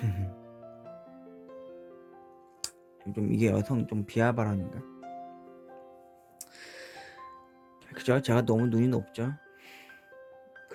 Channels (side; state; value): both; identical; correlation 1.00